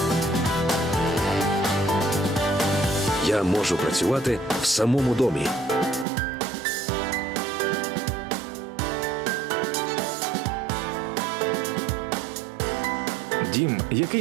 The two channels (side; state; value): left; drops out; at 6.1 s